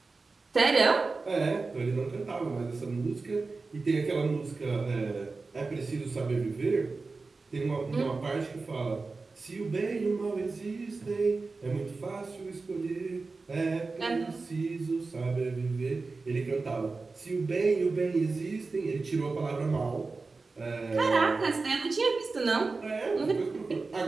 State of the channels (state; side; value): quieter; left; 3.9 dB